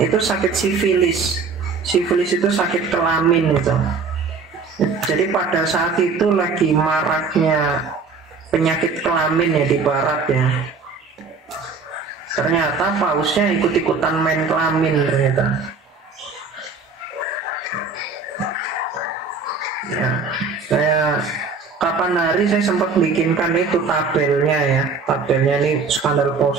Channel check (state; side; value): quieter; left; 4.6 dB